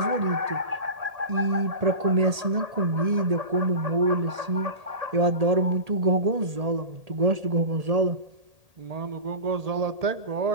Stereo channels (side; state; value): left; late; 1.8 ms